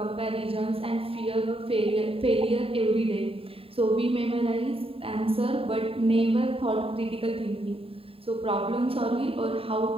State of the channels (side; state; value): left; late; 0.27 ms